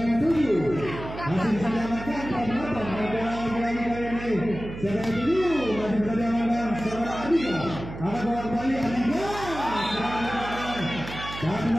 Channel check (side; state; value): right; noise; hum, 11 dB below the sound